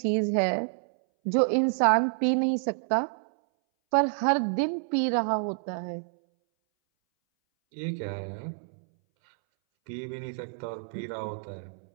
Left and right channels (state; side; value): silent; left; 59 dB below the other